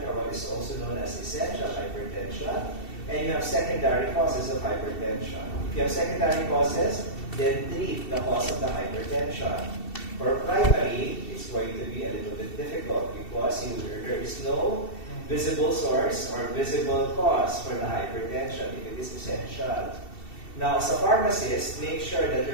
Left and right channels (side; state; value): right; late; 2.7 ms